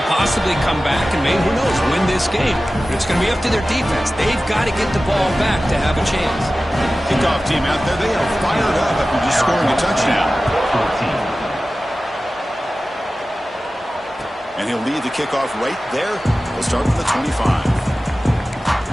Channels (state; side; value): normal; both; correlation 0.96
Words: possibly come back and maybe, who knows, win this game. But it's going to be up to their defense. They've got to get the ball back to have a chance. Kickoff team out there, they are fired up after just scoring a touchdown. And he'll lead the kickoff right there. We'll start from the 25.